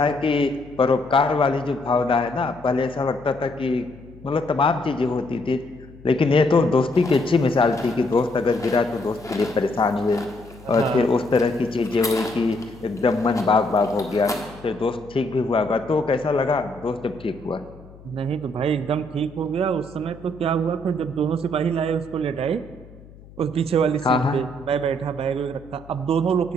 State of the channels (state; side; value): noise; left; hum, 21 dB below the sound